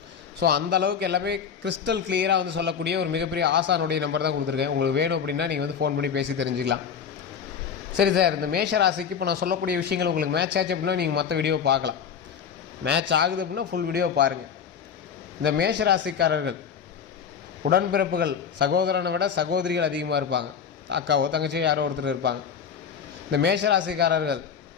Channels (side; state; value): right; quieter; 7.2 dB